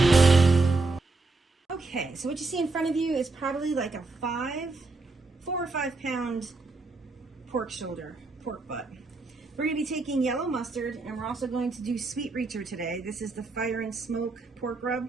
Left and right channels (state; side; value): quieter; left; 3.5 dB